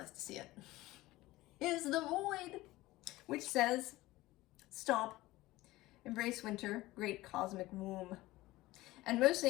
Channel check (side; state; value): right; quieter; 18.4 dB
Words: to see it, is the Void, which says, stop, embrace winter, great cosmic womb. And